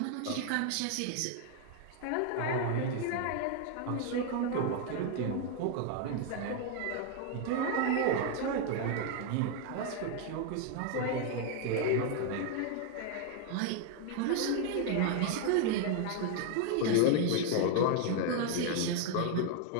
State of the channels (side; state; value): both; different; correlation 0.00